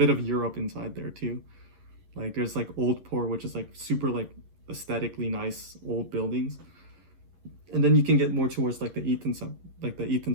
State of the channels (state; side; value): late; left; 11 ms